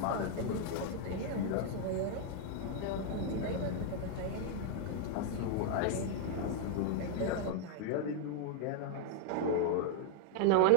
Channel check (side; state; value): both; different; correlation 0.00